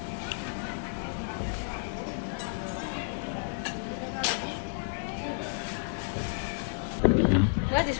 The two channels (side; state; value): right; silent; digital silence